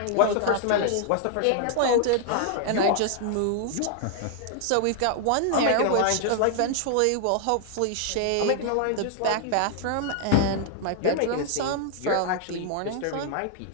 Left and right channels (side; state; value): both; different; correlation 0.00